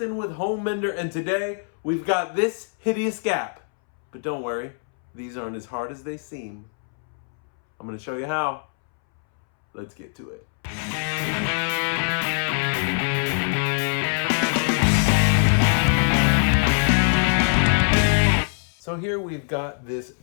with Homemender, and today we've got this hideous gap. But don't worry, these aren't as hard as they seem. I'm going to show you how. Let's get to it. So here we've got this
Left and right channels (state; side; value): silent; right; 63 dB below the other